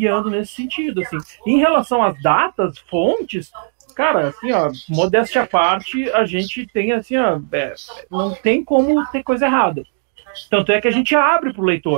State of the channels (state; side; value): silent; left; digital silence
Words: nesse sentido, assim. Em relação às datas, fontes, cara, assim, ó, modéstia à parte, a gente tem, assim, ó, não tem como ter coisa errada. Tanto é que a gente abre para o